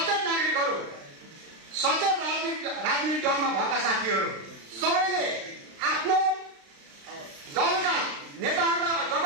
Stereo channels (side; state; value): left; late; 36 ms